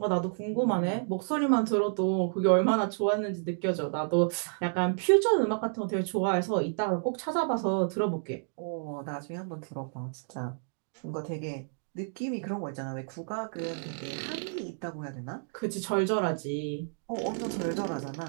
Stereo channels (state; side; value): silent; left; digital silence